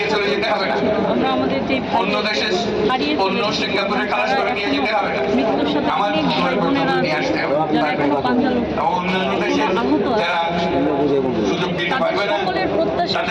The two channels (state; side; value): identical; both; correlation 1.00